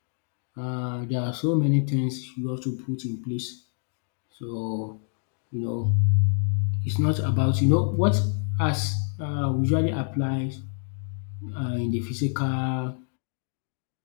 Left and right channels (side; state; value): right; silent; 56 dB below the other